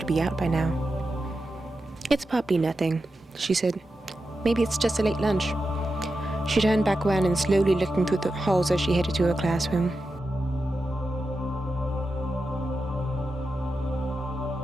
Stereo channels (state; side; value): normal; both; correlation 0.90